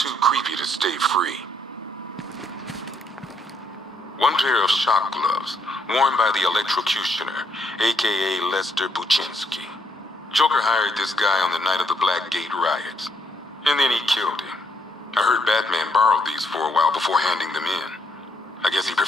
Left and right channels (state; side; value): normal; both; correlation 0.73